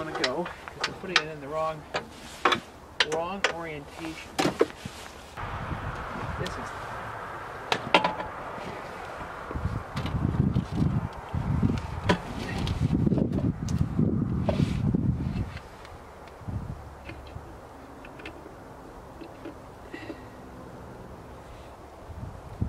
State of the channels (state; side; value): identical; both; correlation 1.00